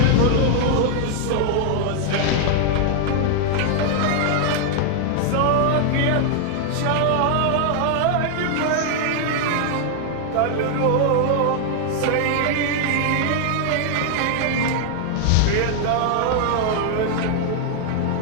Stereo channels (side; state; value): both; different; correlation 0.00